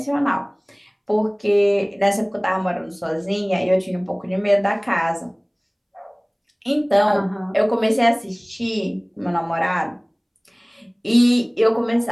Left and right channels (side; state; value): both; identical; correlation 1.00